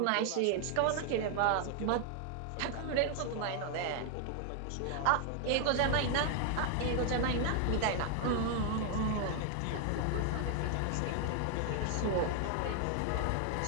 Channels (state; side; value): different; both; correlation 0.00